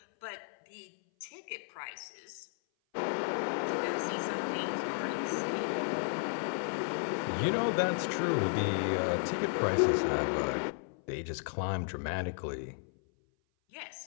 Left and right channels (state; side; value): silent; right; 55 dB below the other